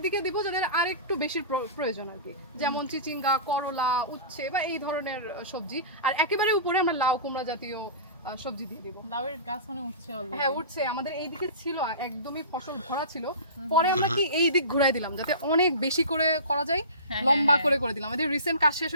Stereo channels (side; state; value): both; inverted; correlation -0.34